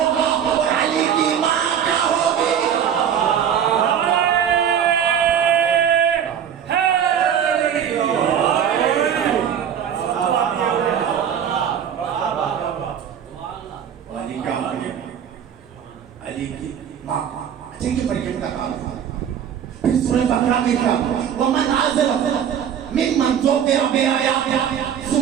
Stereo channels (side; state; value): left; quieter; 8.8 dB